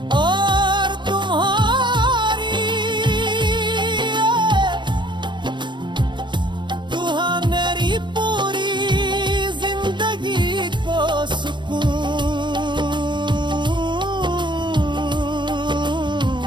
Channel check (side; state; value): left; late; 0.22 ms